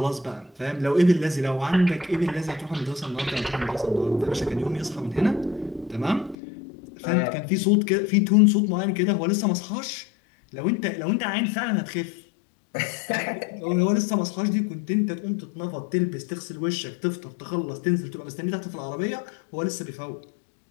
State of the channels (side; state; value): right; drops out; at 6.4 s